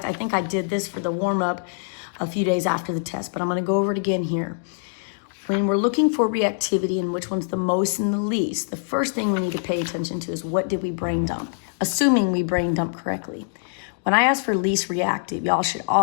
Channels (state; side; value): silent; right; digital silence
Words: I think I did this for the warm-up a few days after the test, but I'm going to go over it again here. When we're looking for reactivity and which one's the most and the least, the first thing we need to pay attention to is what did we brain dump, assuming we brain dump correctly. When I ask for least reactive, y'all should